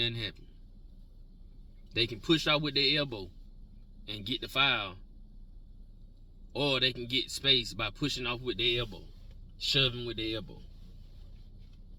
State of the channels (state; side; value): identical; both; correlation 1.00